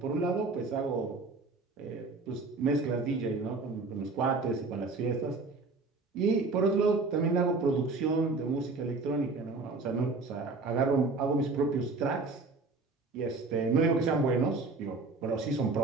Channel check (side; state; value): left; quieter; 3.8 dB